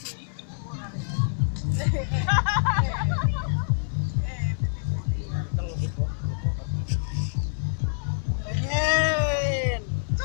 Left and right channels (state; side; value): silent; right; 61 dB below the other